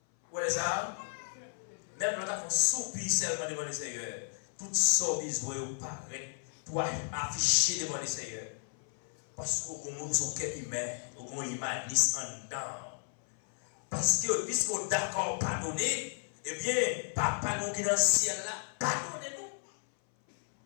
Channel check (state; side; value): silent; right; 55 dB below the other